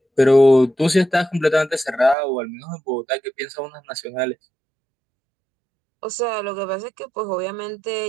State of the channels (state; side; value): drops out; left; at 2.1 s